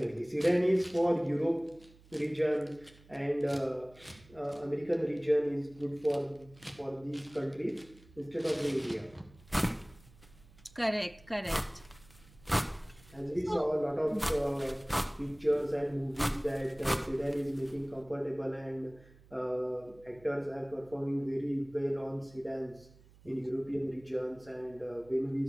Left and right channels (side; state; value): right; noise; hum, 25 dB below the sound